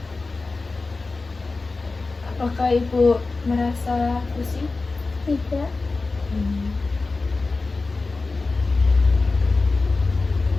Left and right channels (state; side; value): quieter; right; 3.7 dB